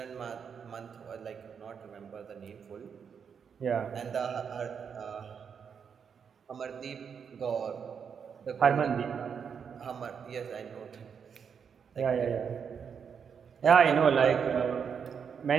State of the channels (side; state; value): left; quieter; 6.9 dB